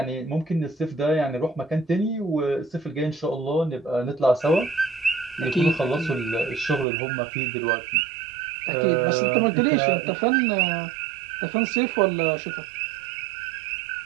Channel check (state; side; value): drops out; left; at 6.9 s